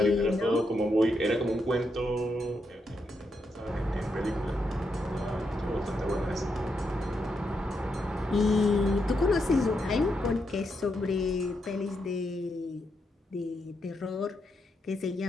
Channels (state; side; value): normal; both; correlation 0.82